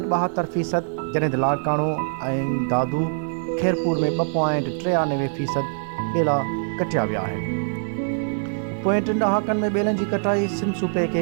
जॾहिं त लाड़काणो ऐं दादू खैरपुर में 2.93% ॿेला कटिया विया आहिनि। पोएं 3 ॾहाकनि में ॿेलनि जी कटाई सिंध सूबे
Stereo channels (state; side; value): silent; left; digital silence